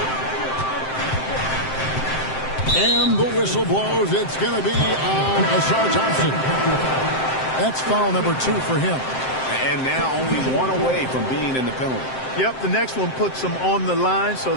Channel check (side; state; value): right; late; 7.7 ms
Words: And the whistle blows. It's going to be on Asar Thompson. That's foul number 2 for him. And now only 1 away from being in the penalty. Yep, the next one puts them on the line, so